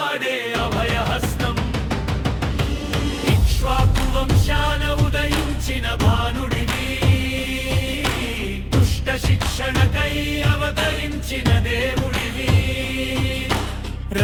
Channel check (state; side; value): identical; both; correlation 1.00